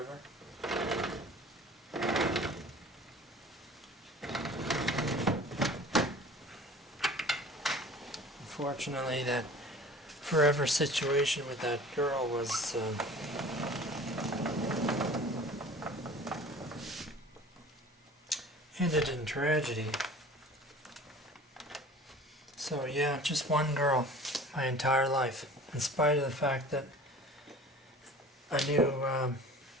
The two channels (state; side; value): normal; both; correlation 0.44